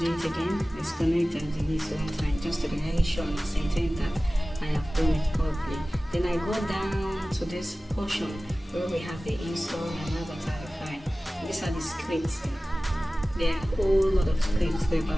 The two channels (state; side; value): normal; both; correlation 0.97